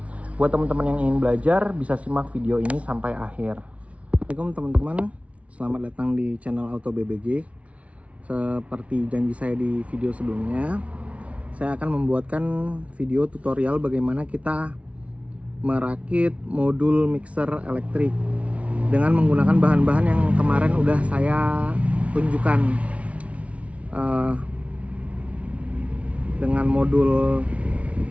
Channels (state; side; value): late; left; 0.064 ms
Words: Buat teman-teman yang ingin belajar, bisa simak video ini sampai akhir. Assalamualaikum teman-teman, selamat datang di channel Auto BBG. Seperti janji saya di video sebelumnya, saya akan membuatkan video tutorial bagaimana kita merakit modul mixer elektrik dengan menggunakan bahan-bahan yang kemarin udah saya tunjukkan, dengan modul